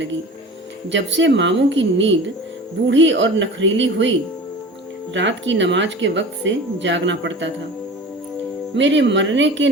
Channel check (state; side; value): normal; both; correlation 0.37